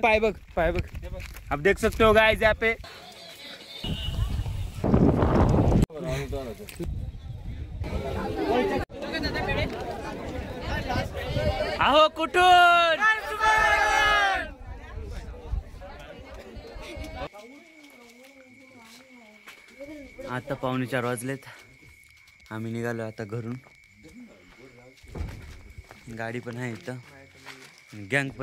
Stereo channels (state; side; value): identical; both; correlation 1.00